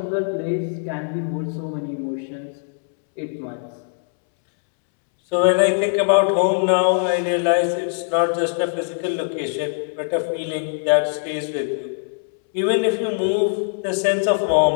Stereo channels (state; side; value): silent; right; 65 dB below the other